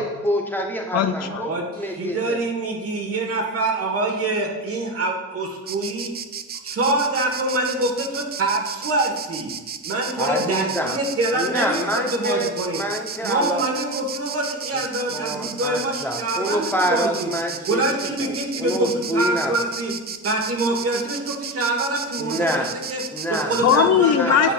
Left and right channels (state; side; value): normal; both; correlation 0.18